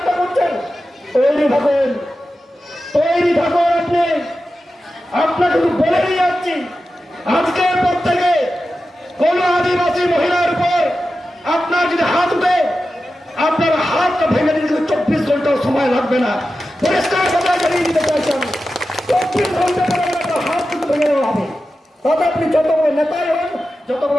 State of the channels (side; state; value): both; normal; correlation 0.92